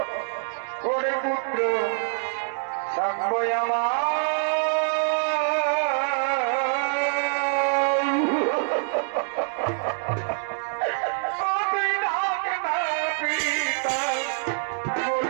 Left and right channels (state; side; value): silent; left; digital silence